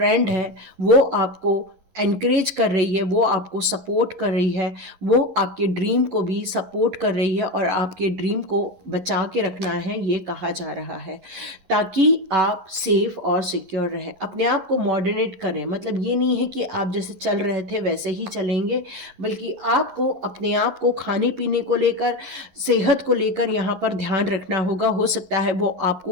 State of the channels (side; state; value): left; late; 11 ms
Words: है, वो आपको एनकरेज कर रही है, वो आपको सपोर्ट कर रही है, वो आपके ड्रीम को भी सपोर्ट कर रही है, और आपके ड्रीम को बचा के रखना है, ये कहा जा रहा है, ताकि आप सेफ और सिक्योर रहें। अपने आप को मॉडरेट करें, मतलब ये नहीं है कि आप जैसे चल रहे थे वैसे ही चलेंगे, बल्कि आपको अपने आप को खाने पीने को लेकर, सेहत को लेकर यहाँ पर ध्यान रखना होगा। हो सकता है वो